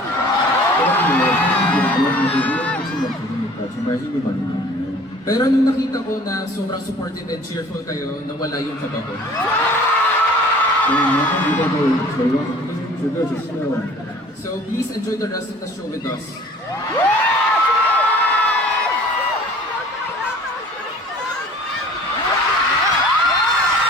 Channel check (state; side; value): normal; both; correlation 0.49